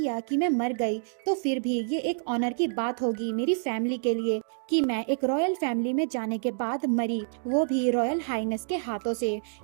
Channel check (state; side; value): silent; left; digital silence